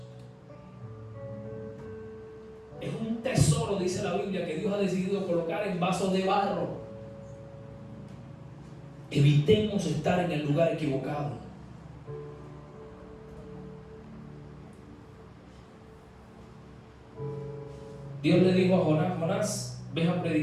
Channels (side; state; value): both; identical; correlation 1.00